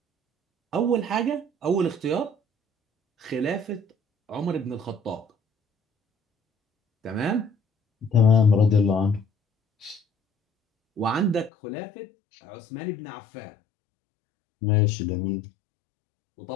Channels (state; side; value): drops out; right; at 11.5 s